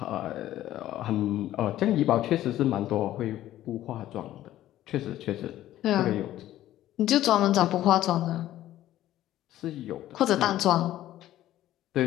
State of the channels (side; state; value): right; quieter; 13.6 dB